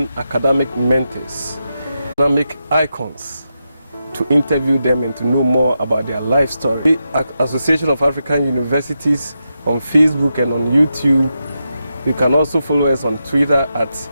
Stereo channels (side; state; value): both; inverted; correlation -0.87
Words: academic mentors, academic icons, to interview them and to know more about their life story. The Association of African Universities on Facebook and on YouTube. You can also follow us on Twitter at